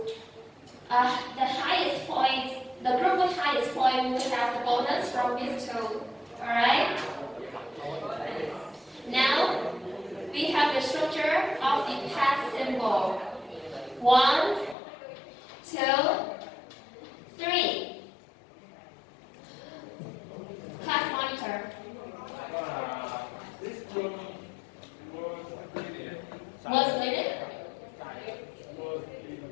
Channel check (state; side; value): drops out; right; at 14.8 s